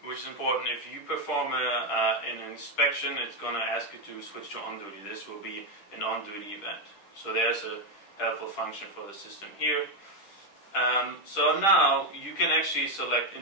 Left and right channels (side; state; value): right; late; 10 ms